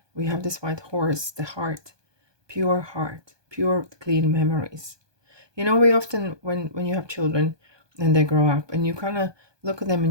We have this white horse, the heart, pure, clean memories. You know, we often, when you have children and they grow up and you kind of look at them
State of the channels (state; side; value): late; left; 1.2 ms